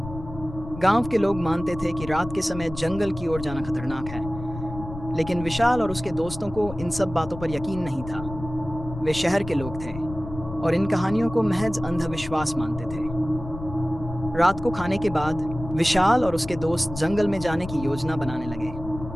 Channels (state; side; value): noise; left; rumble, 11 dB below the sound